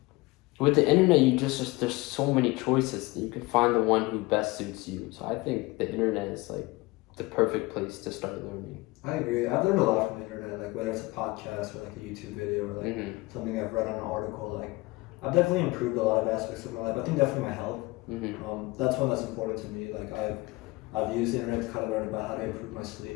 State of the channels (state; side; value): quieter; right; 22.2 dB